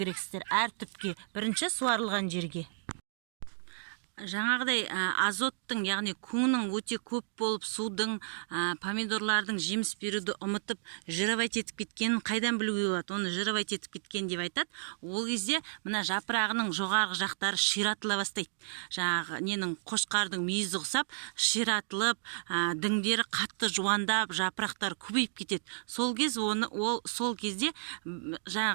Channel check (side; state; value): left; silent; digital silence